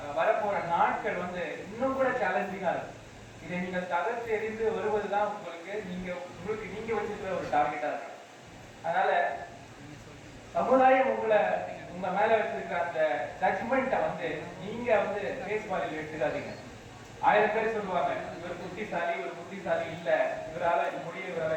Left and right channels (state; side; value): identical; both; correlation 1.00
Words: வரப்போற நாட்கள் வந்து இன்னும் கூட சேலஞ்சிங்கா இருக்கும். இதை நீங்க தகர்த்து எறிந்து வருவதுதான் உங்களுக்கு நீங்க வச்சிருக்கிற ஒரு டார்கெட்டா இருக்கு. அதனால சமுதாயம் உங்க மேல வச்சிருக்கிற அந்த ஜட்மெண்ட்டை வந்து நீங்க வந்து பேஸ் வாலில் எடுத்துக்காதீங்க. 1000 பேர் சொல்லுவாங்க, இவர் புத்திசாலி இல்ல, இவரால